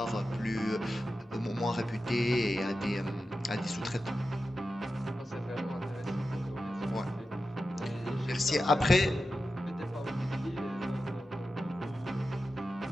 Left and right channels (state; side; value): normal; both; correlation 0.92